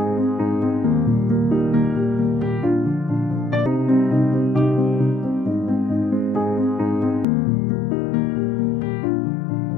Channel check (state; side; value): drops out; right; at 7.2 s